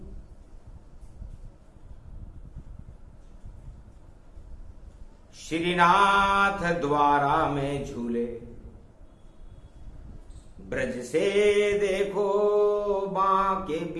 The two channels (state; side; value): identical; both; correlation 1.00